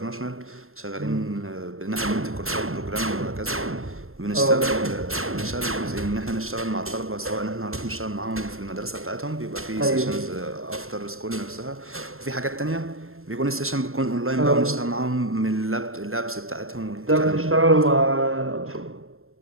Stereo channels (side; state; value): left; late; 0.62 ms